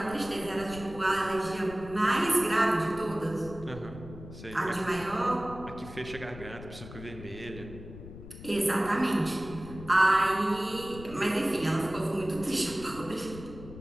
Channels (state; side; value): noise; left; rumble, 14 dB below the sound